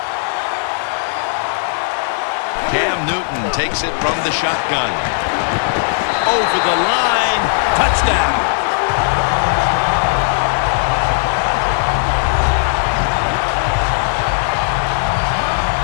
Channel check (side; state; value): right; silent; digital silence